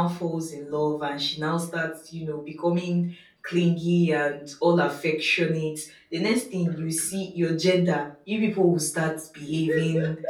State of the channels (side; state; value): both; identical; correlation 1.00